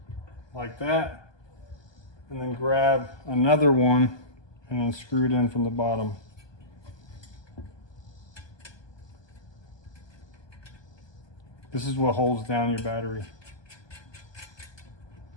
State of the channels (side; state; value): right; late; 1.2 ms